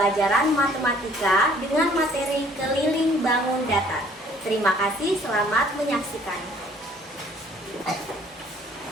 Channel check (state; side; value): normal; both; correlation 0.58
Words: matematika dengan materi keliling bangun datar. Terima kasih, selamat menyaksikan.